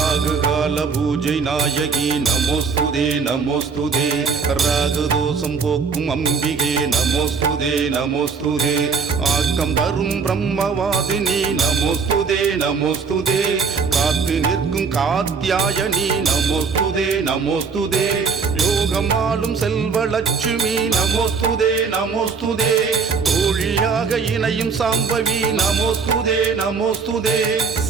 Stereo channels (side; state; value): left; quieter; 5.3 dB